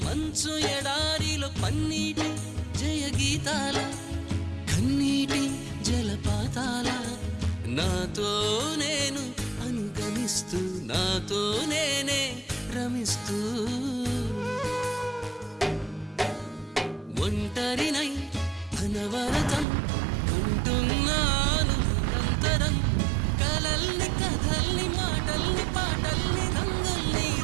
మంచు ఎడారిలో పన్నీటి జయ గీతాల కన్నీటి జలపాతాల నాతో నేను అనుగమిస్తూ నాతో నేనే రమిస్తూ ఒంటరినై అనవరతం కంటున్నాను నిరంతరం కలల్ని కథల్ని మాటల్ని పాటల్ని రంగుల్ని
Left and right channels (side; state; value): left; drops out; at 19.7 s